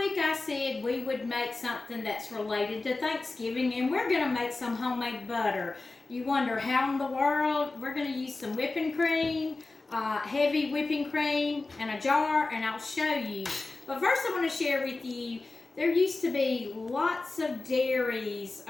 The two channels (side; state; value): right; quieter; 3.4 dB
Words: I said we would make something that's related to Thanksgiving, and we're going to make some homemade butter. You wonder how in the world? We're going to use some whipping cream, heavy whipping cream, and a jar, and I'll show you. But first I want to share with you, there used to be lots of dairies